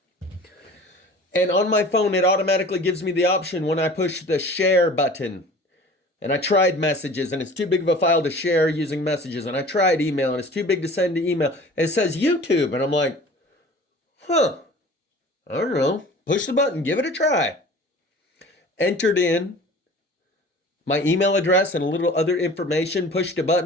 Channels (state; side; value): normal; both; correlation 0.43